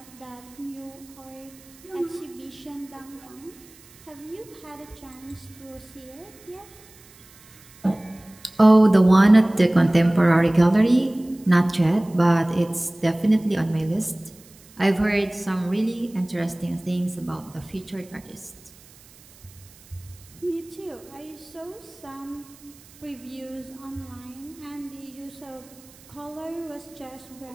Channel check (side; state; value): right; noise; hiss, 24 dB below the sound